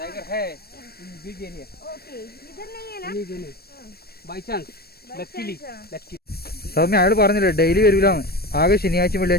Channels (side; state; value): right; late; 0.46 ms